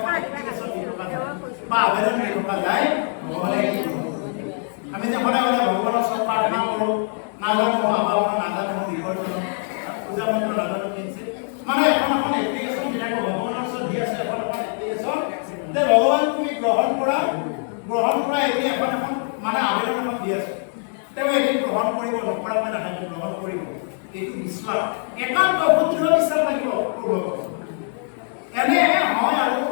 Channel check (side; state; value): right; silent; 55 dB below the other